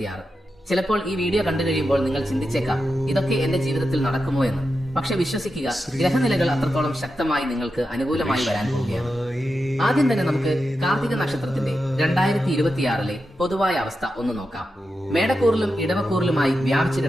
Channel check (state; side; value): normal; both; correlation 0.89